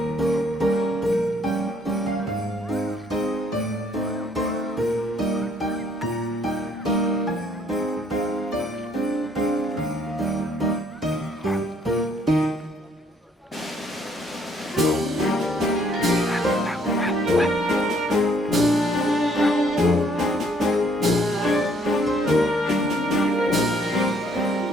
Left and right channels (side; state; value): both; normal; correlation 0.65